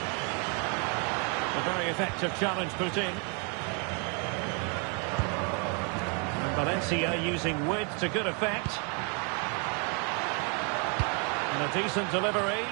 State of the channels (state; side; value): quieter; left; 36.5 dB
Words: A very effective challenge put in. And Valencia using width to good effect. And a decent delivery.